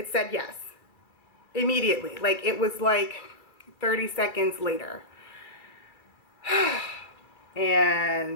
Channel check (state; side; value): late; right; 2.4 ms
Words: said yes immediately. Like it was like 30 seconds later.